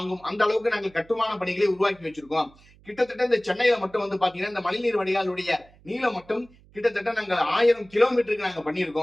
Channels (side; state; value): right; noise; hum, 27 dB below the sound